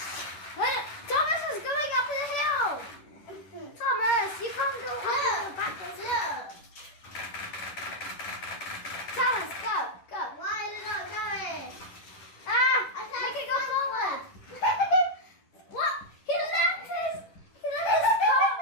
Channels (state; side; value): late; right; 10 ms